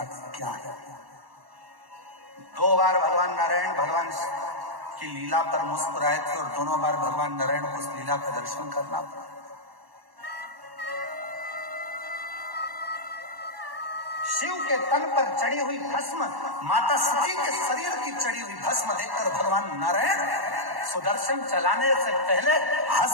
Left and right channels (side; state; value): left; late; 1.1 ms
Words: क्या है। 2 बार भगवान नारायण भगवान की लीला पर मुस्कुराए थे और दोनों बार भगवान नारायण को उस लीला का दर्शन करना पड़ा। शिव के तन पर चढ़ी हुई भस्म, माता सती के शरीर की चढ़ी हुई भस्म देखकर भगवान नारायण सुदर्शन चलाने से पहले